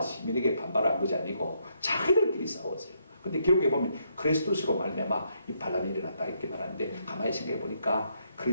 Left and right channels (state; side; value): inverted; both; correlation -0.75